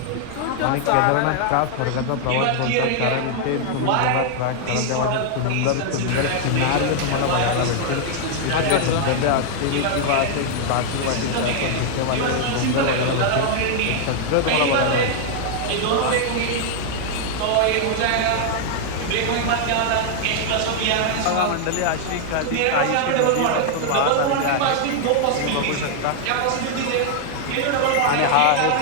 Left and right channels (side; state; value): both; different; correlation 0.00